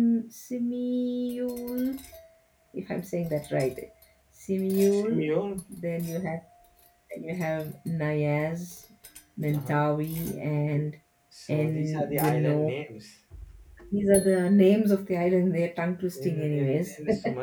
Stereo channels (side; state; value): both; identical; correlation 1.00